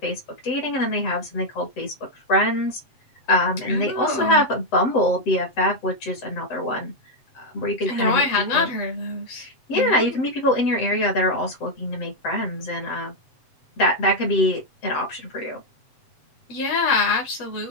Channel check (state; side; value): late; right; 7.8 ms